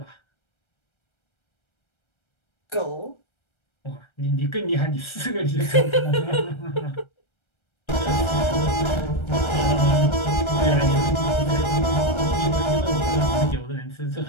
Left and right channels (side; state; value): right; late; 1.3 ms